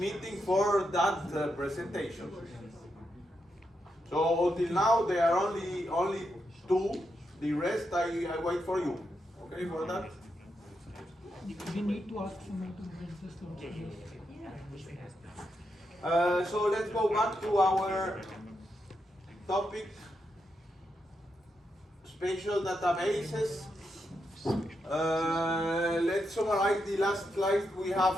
for that presentation. So until now there are only 2, the rest I wait for you. Okay for that? We need to ask someone to get the slot. So let's go back to our topic, spatial databases. Let's summarize the last slide we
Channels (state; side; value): normal; both; correlation 0.84